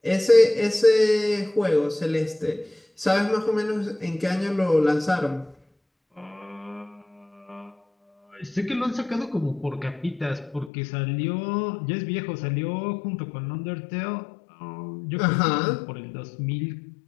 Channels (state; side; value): drops out; right; at 10.7 s